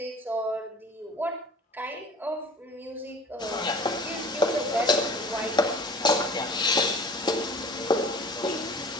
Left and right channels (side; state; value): both; normal; correlation 0.43